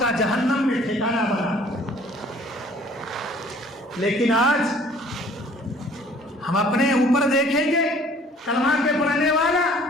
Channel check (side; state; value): both; normal; correlation 0.54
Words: کا جہنم میں ٹھکانہ بنا۔ لیکن آج ہم اپنے اوپر دیکھیں گے، کلمہ کے پڑھنے والا